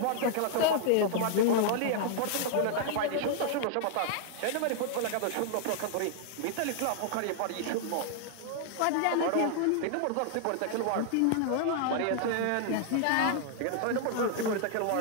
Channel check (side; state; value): both; different; correlation -0.01